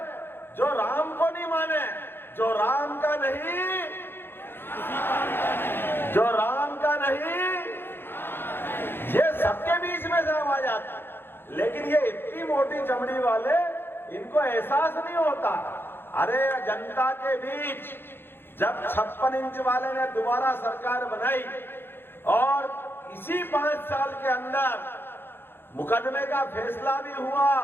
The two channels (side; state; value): right; late; 0.10 ms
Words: जो राम को नहीं माने, जो राम का नहीं, जो राम का नहीं, ये सबके बीच में से आवाज आती है। लेकिन ये इतनी मोटी चमड़ी वाले, इनको एहसास नहीं होता। अरे जनता के बीच जब 56 इंच वाले ने दोबारा सरकार बनाई और इसी 5 साल के अंदर मुकदमे का फैसला भी हुआ,